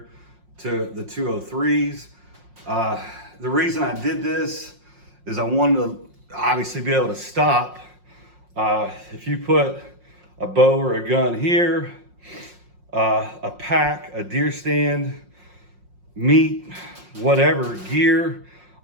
to the 203s. The reason I did this is I wanted to obviously be able to stop. If you put a bow or a gun here, a pack, a deer stand, meat, whatever, gear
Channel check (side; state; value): left; late; 5.6 ms